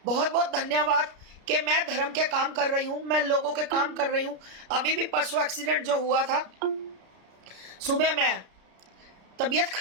बहुत बहुत धन्यवाद कि मैं धर्म के काम कर रही हूं, मैं लोगों के काम कर रही हूं। अभी भी परसों एक्सीडेंट जो हुआ था, सुबह मैं तबीयत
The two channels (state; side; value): late; left; 33 ms